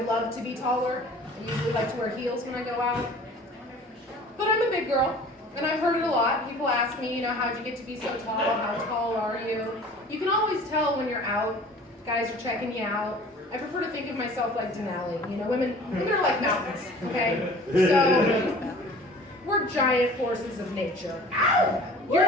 love to be taller. I usually like to wear heels when I go out. But I'm a big girl, and I've heard it a lot. People ask me, you know, how'd you get to be so tall? How tall are you? You can always tell when you're out. Guys are checking you out. I prefer to think of myself like Denali. You know, women are like mountains, okay? So, we're giant forces of nature. You're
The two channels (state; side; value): normal; both; correlation 0.46